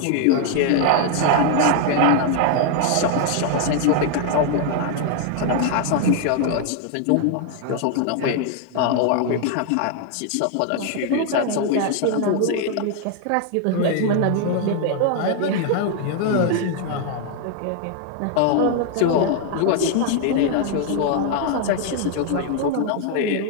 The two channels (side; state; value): both; different; correlation 0.00